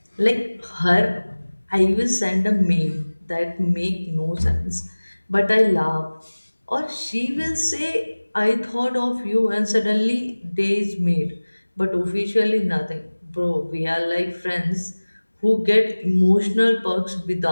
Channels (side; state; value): both; inverted; correlation -1.00